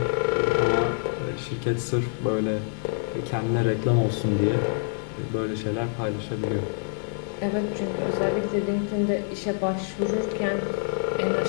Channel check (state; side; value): silent; right; 61 dB below the other